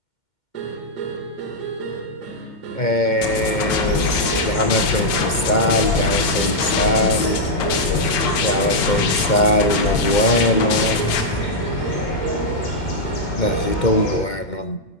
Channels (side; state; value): right; late; 2.3 ms